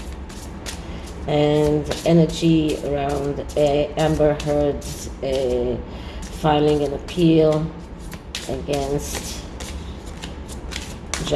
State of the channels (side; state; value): both; identical; correlation 1.00